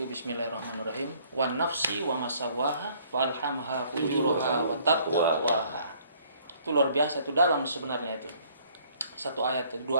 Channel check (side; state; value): both; inverted; correlation -0.61